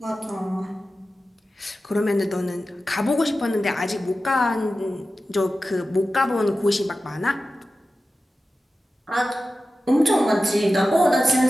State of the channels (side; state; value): both; normal; correlation 0.94